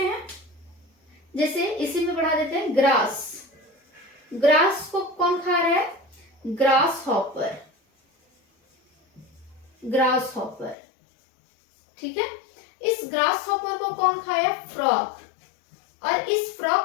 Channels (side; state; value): right; drops out; at 10.8 s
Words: हैं, जैसे इसी में बढ़ा देते हैं, ग्रास, ग्रास को कौन खा रहा है, ग्रास हॉपर, ग्रास हॉपर। ठीक है, इस ग्रास हॉपर को कौन खाया, फ्रॉग, और इस फ्रॉग